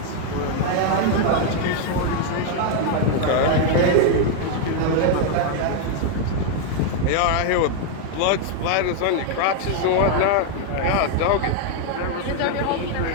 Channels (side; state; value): both; different; correlation 0.00